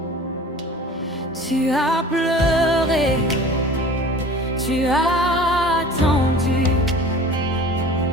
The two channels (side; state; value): both; normal; correlation 0.42